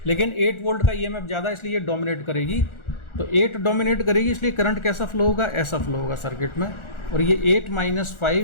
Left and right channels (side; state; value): right; late; 1.4 ms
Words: लेकिन 8 वोल्ट का ईएमएफ ज़्यादा, इसलिए ये डोमिनेट करेगी। तो 8 डोमिनेट करेगी, इसलिए करंट कैसा फ्लो होगा, ऐसा फ्लो होगा सर्किट में। और ये 8 -